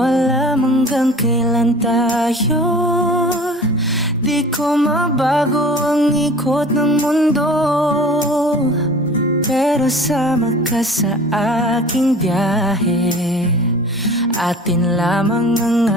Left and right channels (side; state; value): both; normal; correlation 0.44